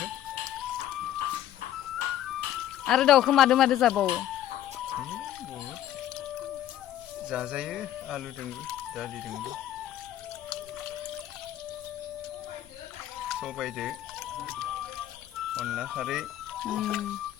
आरो दाउखौ मादो मादो जाबावो? बहुद जाजायो आलुजोंबो दालिजोंबो सबायदो अनला खारै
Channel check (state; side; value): quieter; right; 12.1 dB